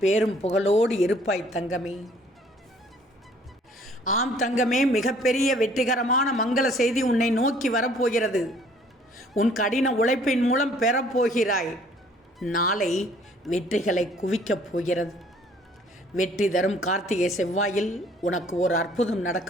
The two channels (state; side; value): normal; both; correlation 0.58